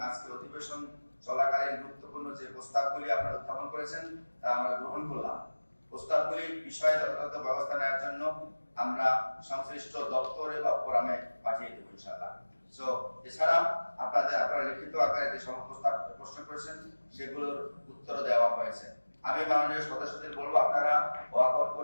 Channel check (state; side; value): inverted; both; correlation -1.00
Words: আজকে অধিবেশন চলাকালীন গুরুত্বপূর্ণ যে প্রস্তাবগুলি আপনারা উত্থাপন করেছেন তা আমরা গ্রহণ করলাম। প্রস্তাবগুলি বিষয়ে যথাযথ ব্যবস্থা নেওয়ার জন্য আমরা সংশ্লিষ্ট দপ্তরে বা ফোরামে পাঠিয়ে দেবো ইনশাআল্লাহ। সো এছাড়া আপনারা লিখিত আকারে যে সমস্ত প্রশ্ন করেছেন সেগুলোর উত্তর দেওয়া হয়েছে। আমি মাননীয় সদস্যদের বলবো আপনারা ওয়াকআউট